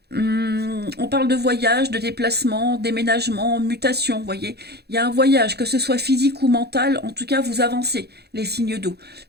On parle de voyage, de déplacement, déménagement, mutation, vous voyez. Il y a un voyage, que ce soit physique ou mental, en tout cas, vous avancez, les signes d'eau.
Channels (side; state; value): left; late; 0.48 ms